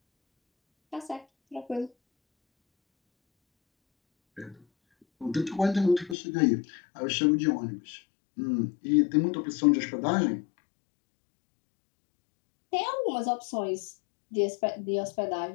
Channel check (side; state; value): right; drops out; at 6.2 s